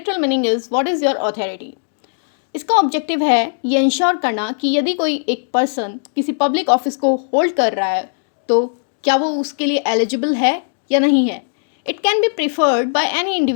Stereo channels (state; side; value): silent; right; digital silence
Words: meaning is what is your authority. इसका ऑब्जेक्टिव है ये इंश्योर करना कि यदि कोई एक पर्सन किसी पब्लिक ऑफिस को होल्ड कर रहा है तो क्या वो उसके लिए एलिजिबल है या नहीं है. It can be preferred by any